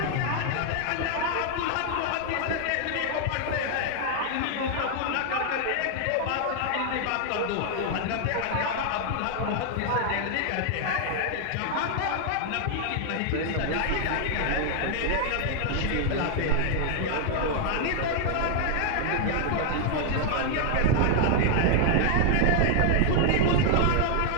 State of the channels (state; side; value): different; both; correlation 0.00